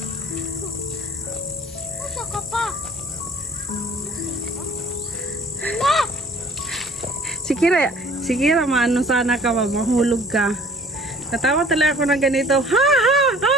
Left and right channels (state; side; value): normal; both; correlation 0.53